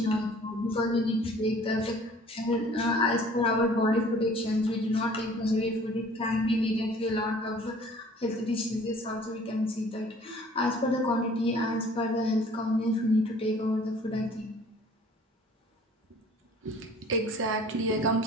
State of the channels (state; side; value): normal; both; correlation 0.52